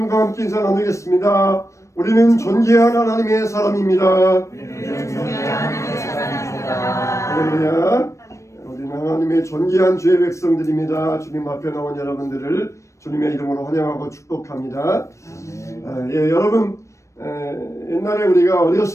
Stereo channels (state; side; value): late; right; 0.15 ms